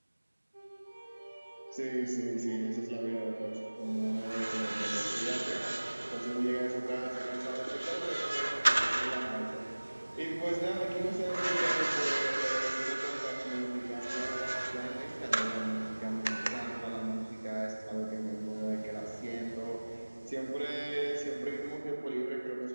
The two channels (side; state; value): both; inverted; correlation -1.00